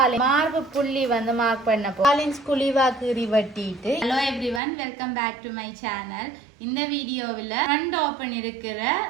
மார்பு புள்ளி வந்து மார்க் பண்ண காலின்ஸ் குழிவா கீறி வெட்டிட்டு. Hello everyone, welcome back to my channel. இந்த வீடியோவில் ஃப்ரண்ட் ஓப்பன் இருக்கிற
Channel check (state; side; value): drops out; left; at 4.6 s